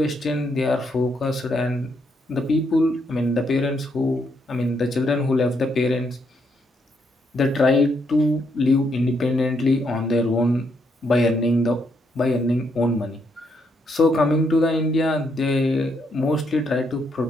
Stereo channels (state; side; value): normal; both; correlation 0.76